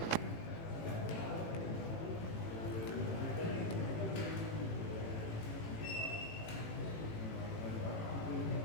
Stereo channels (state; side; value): late; right; 18 ms